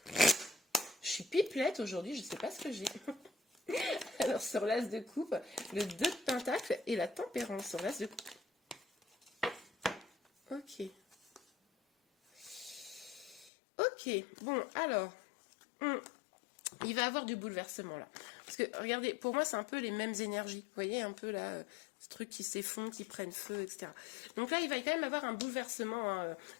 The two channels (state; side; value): drops out; right; at 13.5 s